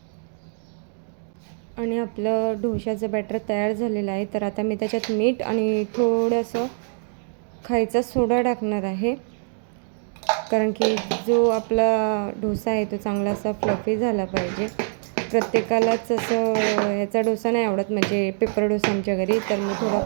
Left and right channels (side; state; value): left; silent; digital silence